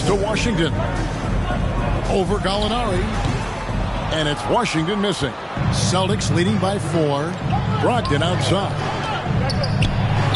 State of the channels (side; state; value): both; identical; correlation 1.00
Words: to Washington. Over Gallinari. And it's Washington missing. Celtics leading by 4. Brogdon outside.